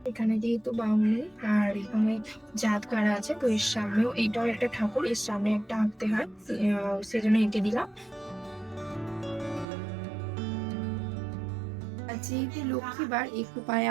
এখানে যেহেতু বাউনি আর এখানে জাত কারা আছে, তো এর সামনেও এইটাও একটা ঠাকুর, এর সামনে একটা আঁকতে হয়, সেজন্য এঁকে দিলাম। যেহেতু লক্ষ্মীবার একটু পায়ে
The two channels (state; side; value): drops out; left; at 9.7 s